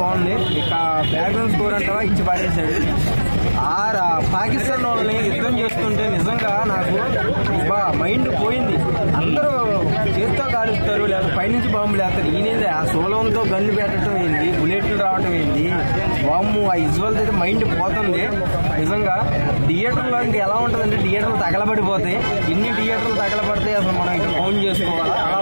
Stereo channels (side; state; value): both; inverted; correlation -1.00